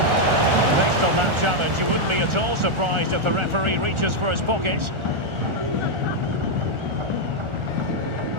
on that challenge. You wouldn't be at all surprised if the referee reaches for his pocket.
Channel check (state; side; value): late; left; 1.4 ms